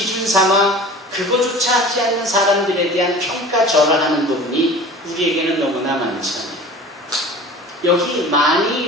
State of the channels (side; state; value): both; normal; correlation 0.40